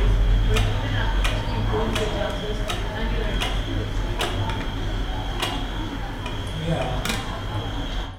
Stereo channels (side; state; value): both; identical; correlation 1.00